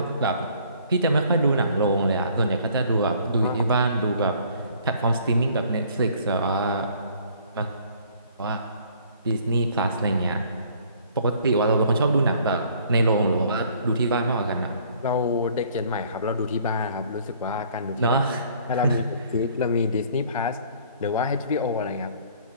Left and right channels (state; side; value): inverted; both; correlation -0.58